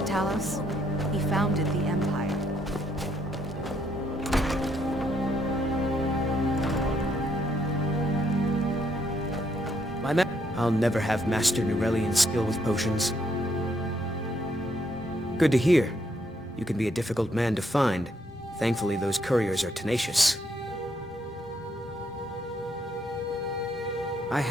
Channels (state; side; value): normal; both; correlation 0.73